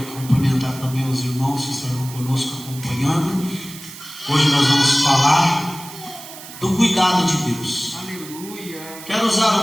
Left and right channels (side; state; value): right; noise; hiss, 15 dB below the sound